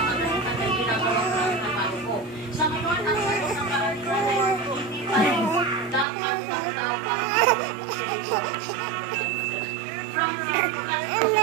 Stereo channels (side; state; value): left; drops out; at 6.1 s